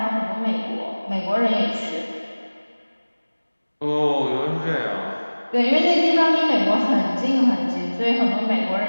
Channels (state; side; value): inverted; both; correlation -1.00